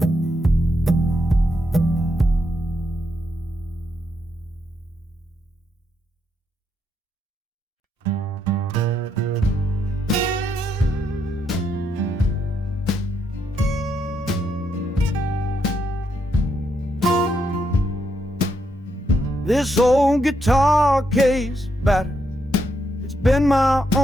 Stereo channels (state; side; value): normal; both; correlation 0.79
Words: This old guitar case battered, it's been my